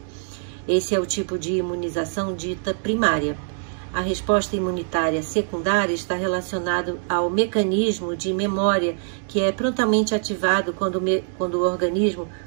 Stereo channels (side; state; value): left; silent; digital silence